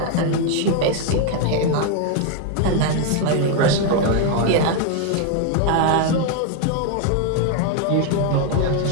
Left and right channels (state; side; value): different; both; correlation 0.01